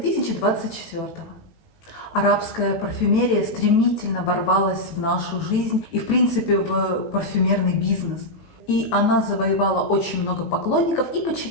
Арабская парфюмерия стремительно ворвалась в нашу жизнь и, в принципе, в парфюмерный бизнес. И она завоевала очень много поклонников и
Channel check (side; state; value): right; late; 18 ms